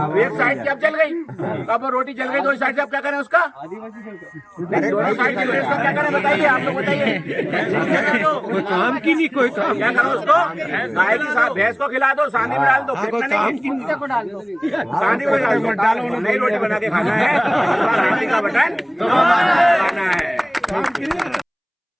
एक साइड की अब जल गई। अब वो रोटी जल गई, 2 साइड से अब क्या करें उसका? दोनों साइड की व्यवस्था क्या करें बताइए, आप लोग बताइए। कोई काम की नहीं, कोई काम क्या करो उसको? गाय की भैंस को खिला दो, सांडी में डाल दो, को डाल दो, सांडी में डाल दो, नई रोटी बना के खाना है, का बटन खाना है।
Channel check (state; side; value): identical; both; correlation 1.00